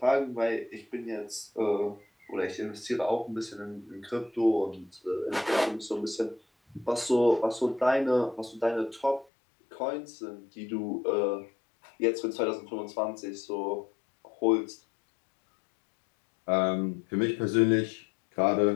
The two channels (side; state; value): right; drops out; at 9.2 s